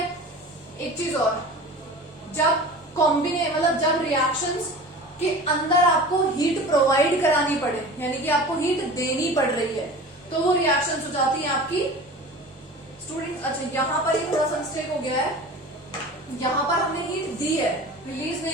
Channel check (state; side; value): normal; both; correlation 0.37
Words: एक चीज और, जब मतलब जब रिएक्शंस कि अंदर आपको हीट प्रोवाइड करानी पड़े, यानी कि आपको हीट देनी पड़ रही है, तो वो रिएक्शंस हो जाती हैं आपकी स्टूडेंट। अच्छा यहां पर ये थोड़ा सा मिस्टेक हो गया है, यहां पर हमने हीट दी है, रिलीज